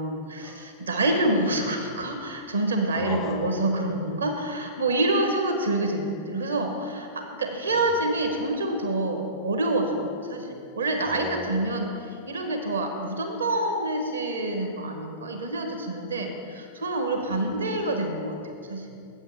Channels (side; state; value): both; inverted; correlation -0.43